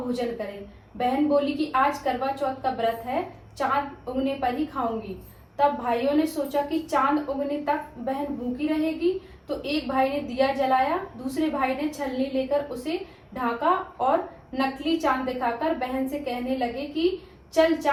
करें। बहन बोली कि आज करवा चौथ का व्रत है, चांद उगने पर ही खाऊंगी। तब भाइयों ने सोचा कि चांद उगने तक बहन भूखी रहेगी, तो एक भाई ने दिया जलाया, दूसरे भाई ने छलनी लेकर उसे ढांका और नकली चांद दिखाकर बहन से कहने लगे कि चल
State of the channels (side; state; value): both; identical; correlation 1.00